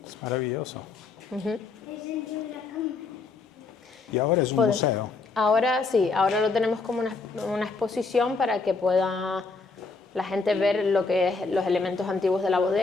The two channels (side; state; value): right; quieter; 4.2 dB